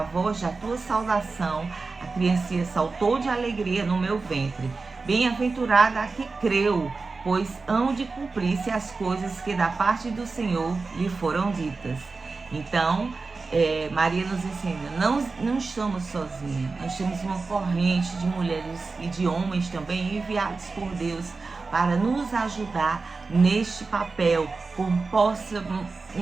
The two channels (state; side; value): quieter; left; 4.1 dB